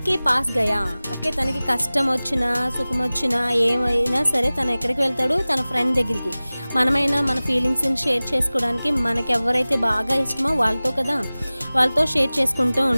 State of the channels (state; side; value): inverted; both; correlation -0.98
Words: కే పాస్ గయా. ఓకే, తనకి కష్టం వచ్చినా సుఖం వచ్చినా ఏమైనా సరే తను ఎక్కడికి వెళ్తాడు? తన ఫ్రెండ్ దగ్గరికి. మనమైనా మన ఫీలింగ్స్ని షేర్ చేసుకోవడానికి మనకి ఎవరైతే బాగా ఇష్టమో వాళ్ళతో కదా, వాళ్ళతో షేర్ చేసుకుంటూ